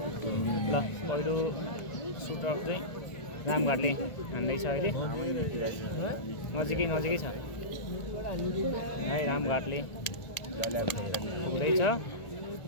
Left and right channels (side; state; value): right; late; 1.8 ms